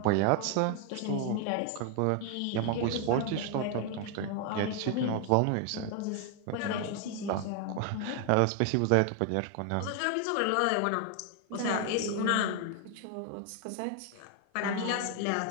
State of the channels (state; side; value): different; both; correlation 0.00